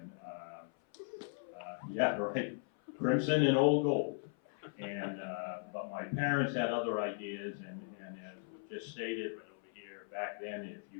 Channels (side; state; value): right; silent; 53 dB below the other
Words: yeah, right, crimson and old gold. And but my parents had other ideas, and as was just stated right over here, back then, if